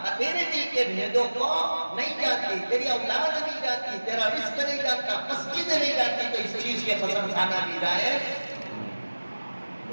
تیرے دل کے بھیدوں کو نہیں جانتی، تیری اولاد نہیں جانتی، تیرا رزق نہیں جانتا، مسجد نہیں جانتی، تو اس چیز کی قسم کھانا بھی جائز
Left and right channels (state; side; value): inverted; both; correlation -1.00